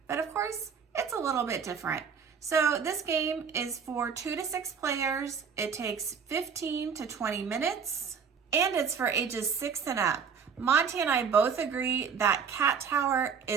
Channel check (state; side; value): quieter; left; 6.5 dB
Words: but of course, it's a little bit different. So this game is for 2 to 6 players. It takes 15 to 20 minutes, and it's for ages 6 and up. Monty and I both agree that Cat Tower